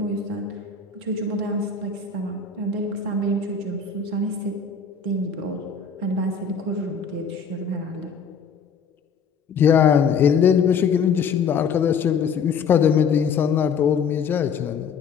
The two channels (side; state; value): right; quieter; 6.0 dB